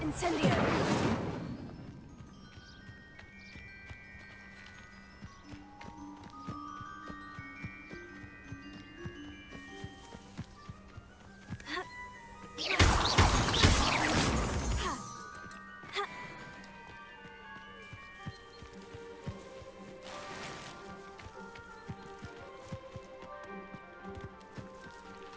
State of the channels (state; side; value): identical; both; correlation 1.00